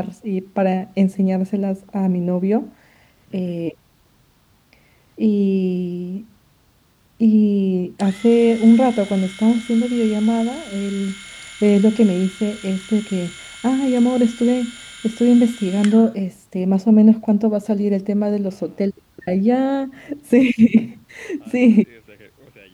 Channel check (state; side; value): identical; both; correlation 1.00